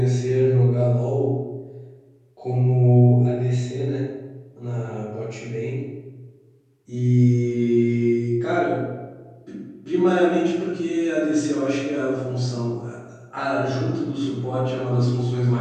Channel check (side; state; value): both; identical; correlation 1.00